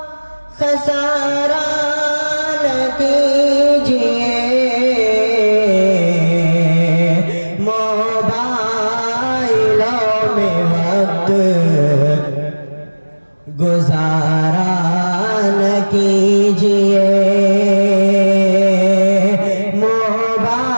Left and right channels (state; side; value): inverted; both; correlation -1.00